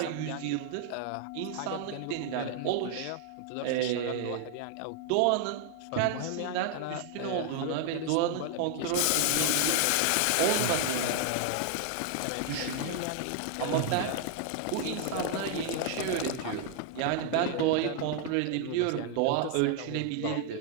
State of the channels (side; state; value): both; different; correlation 0.00